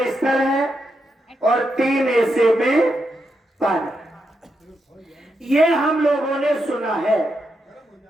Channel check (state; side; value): normal; both; correlation 0.84